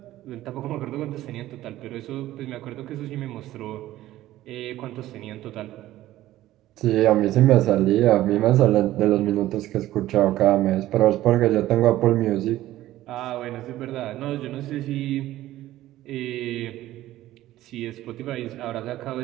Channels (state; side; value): quieter; left; 14.9 dB